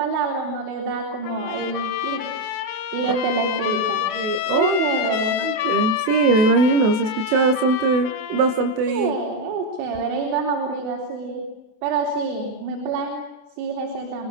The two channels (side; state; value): left; late; 28 ms